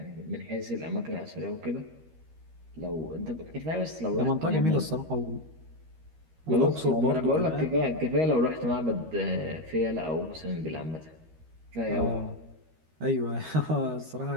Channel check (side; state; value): left; late; 13 ms